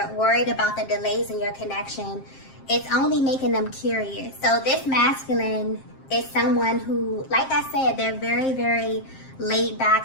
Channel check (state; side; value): late; right; 7.5 ms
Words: worried about the delays in your connection, it's only making them curious. So this masculine is someone who, like I said, they're very, very laid